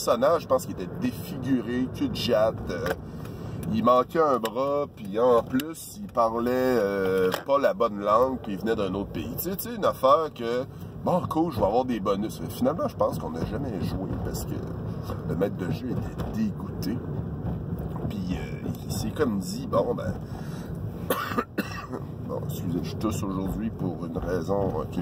je pense qu'il était défiguré, cul de jatte, il manquait un bras, puis en plus, il parlait pas la bonne langue, puis il venait d'un autre pays. Tu sais, une affaire que, bon, cool, je vais avoir des bonus. Mais finalement, je pense qu'on n'a jamais joué parce que le maître de jeu était dégoûté. Puis il s'est comme dit, bon, ben... bon, excusez, je tousse aujourd'hui pour une raison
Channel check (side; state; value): both; identical; correlation 1.00